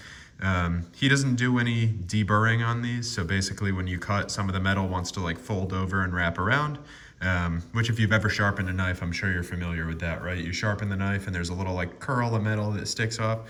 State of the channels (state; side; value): identical; both; correlation 1.00